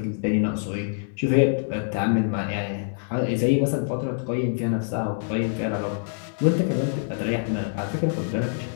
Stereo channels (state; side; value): silent; right; digital silence